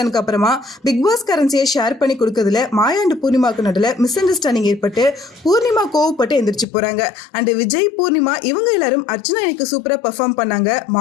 அப்புறமா பிக் பாஸ் கரன்சியை ஷேர் பண்ணி கொடுக்கறதுல மாயா அண்ட் பூர்ணிமாக்கு நடுவில் மிஸ் அண்டர்ஸ்டாண்டிங் ஏற்பட்டு பூர்ணிமா கோவப்பட்டு எந்திரிச்சு போறாங்க. அண்ட் விஜய் பூர்ணிமா இவங்க எல்லாரும் அர்ச்சனா எனக்கு சூப்பரா பெர்ஃபார்ம் பண்ணாங்க,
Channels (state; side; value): drops out; right; at 6.7 s